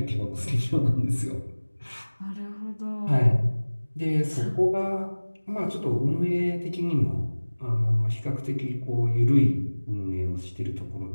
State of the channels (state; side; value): inverted; both; correlation -1.00